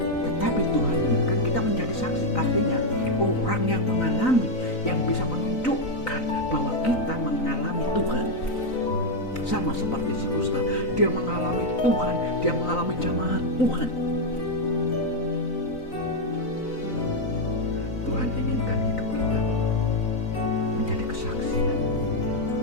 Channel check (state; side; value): late; right; 3.9 ms